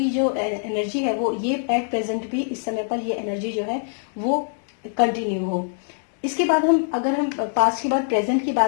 जो एनर्जी है वो ये एट प्रेजेंट भी इस समय पर ये एनर्जी जो है वो कंटिन्यू हो। इसके बाद अगर हम पास्ट के बाद प्रेजेंट की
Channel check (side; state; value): right; silent; digital silence